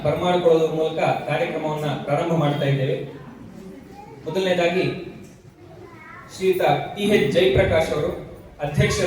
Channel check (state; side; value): identical; both; correlation 1.00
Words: ಬರಮಾಡಿಕೊಳ್ಳುವುದರ ಮೂಲಕ ಕಾರ್ಯಕ್ರಮವನ್ನ ಪ್ರಾರಂಭ ಮಾಡ್ತಾ ಇದ್ದೇವೆ. ಮೊದಲನೇದಾಗಿ ಶ್ರೀಯುತ ಟಿ.ಎಚ್. ಜಯಪ್ರಕಾಶ್ ಅವರು,